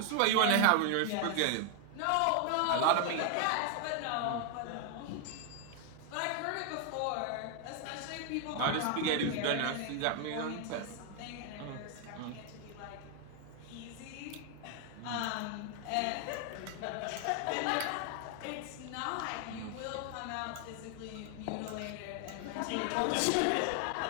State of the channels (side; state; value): both; different; correlation 0.00